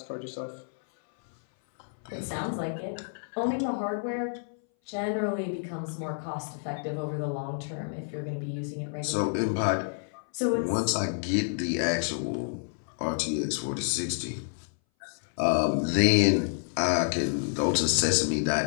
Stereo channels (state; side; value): silent; right; 59 dB below the other